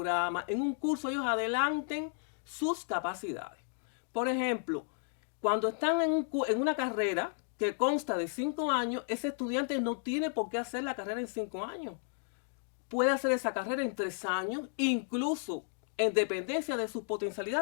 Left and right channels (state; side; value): silent; right; digital silence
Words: en un curso, ellos adelanten sus capacidades. Por ejemplo, cuando están en una carrera que consta de 5 años, ese estudiante no tiene por qué hacer la carrera en 5 años. Puede hacer esa carrera en 3 años, incluso en dependencia de sus